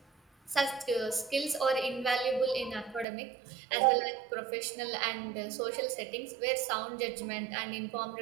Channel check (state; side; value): drops out; left; at 3.1 s